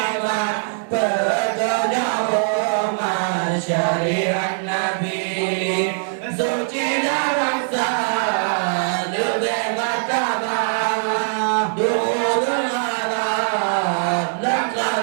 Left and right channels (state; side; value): silent; left; digital silence